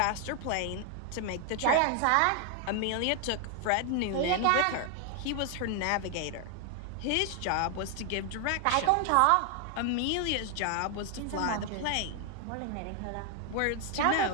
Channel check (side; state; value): both; different; correlation 0.00